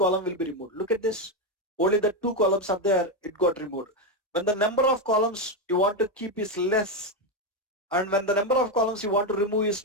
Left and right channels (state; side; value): normal; both; correlation 0.08